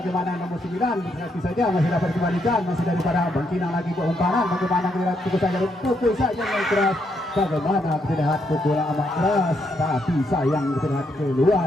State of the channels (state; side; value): normal; both; correlation 0.77